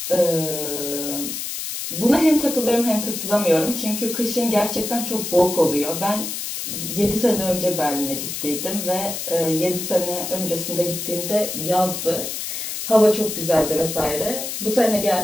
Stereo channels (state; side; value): noise; left; hiss, 5 dB below the sound